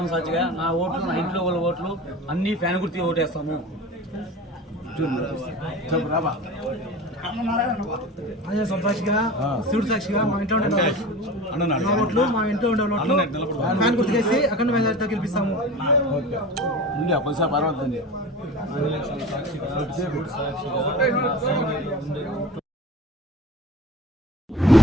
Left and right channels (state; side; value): normal; both; correlation 0.35